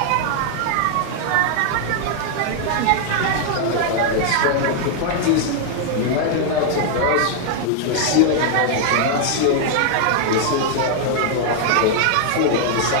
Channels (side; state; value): both; different; correlation 0.00